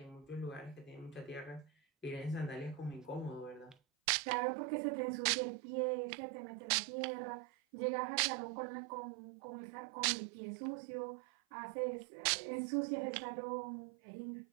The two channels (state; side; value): drops out; left; at 3.8 s